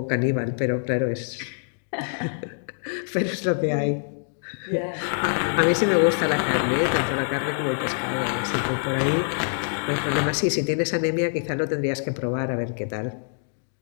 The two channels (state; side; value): silent; right; digital silence